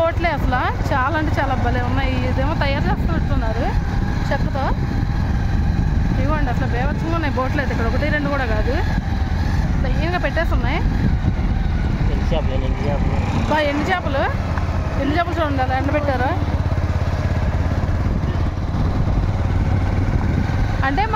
అసలు చాలా అంటే చాలా భలే ఉన్నాయి. ఇదేమో తయారు చేస్తున్నట్టున్నారు చెక్కతో. ఇవ్వండి, అసలు బేవచ్చంగా ఉన్నాయి బోట్లు అయితే. ఇక్కడ 1, 2 కూడా కాదు, లైన్గా పెట్టేసి ఉన్నాయి. ఎండు చేపలు చూడండి, అలా ఎండబెట్టారు. అంటే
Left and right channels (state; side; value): identical; both; correlation 1.00